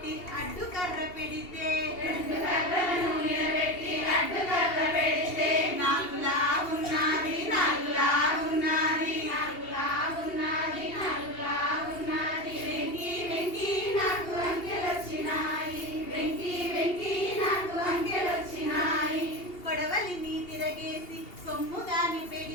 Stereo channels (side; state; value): right; late; 2.8 ms